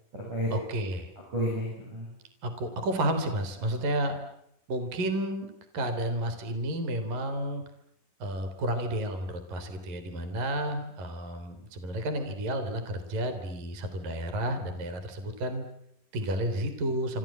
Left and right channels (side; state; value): left; late; 11 ms